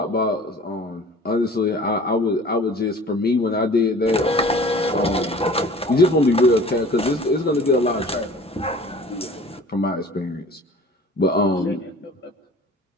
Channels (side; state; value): both; normal; correlation 0.45